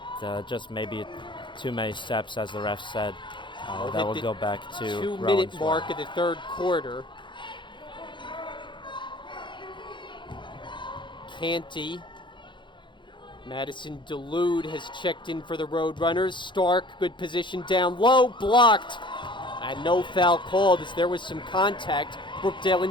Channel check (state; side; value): late; right; 0.23 ms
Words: just maybe too many steps, as the ref said. That will go back to 2-minute Rowan's mark way. of the third quarter. Canty. Madison Delude has checked in for the Roadrunners. Stark, good position down low, blocked. And no foul called as there was some contact. Brookdale in